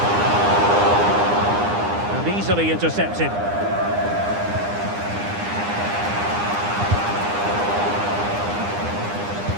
And easily intercepted.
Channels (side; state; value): left; late; 9.8 ms